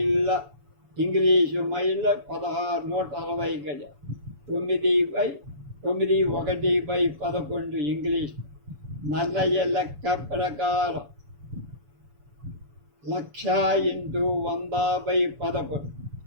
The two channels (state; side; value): late; left; 7.0 ms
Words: ఇంగ్లీషు మైళ్ళ 1,660 గజ. 9/1/11 ఇంగ్లీష్. నన్నయ్య లెక్క ప్రకారం 1,00,000 × 100/11